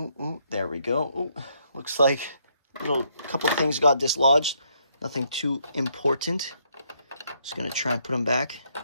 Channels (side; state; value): both; inverted; correlation -0.72